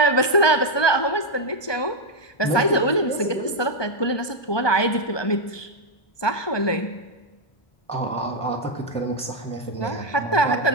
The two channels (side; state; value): right; late; 1.2 ms